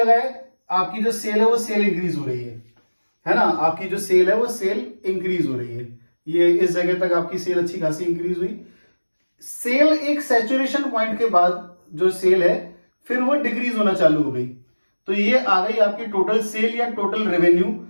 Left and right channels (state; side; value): inverted; both; correlation -1.00